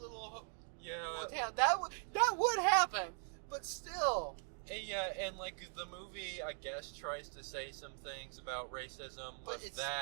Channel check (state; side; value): silent; left; 51 dB below the other